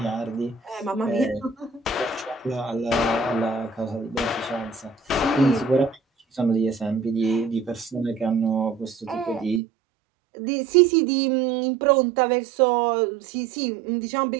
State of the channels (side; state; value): left; drops out; at 9.6 s